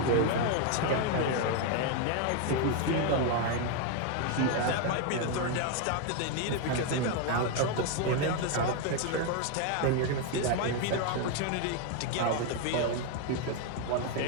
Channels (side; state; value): both; different; correlation 0.01